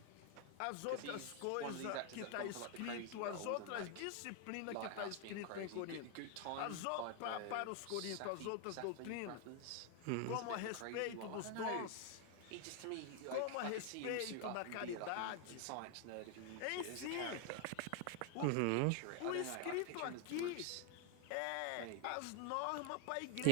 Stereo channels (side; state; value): both; different; correlation 0.00